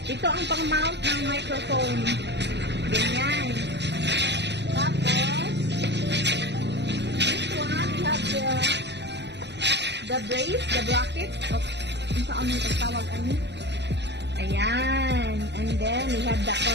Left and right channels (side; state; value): left; late; 0.50 ms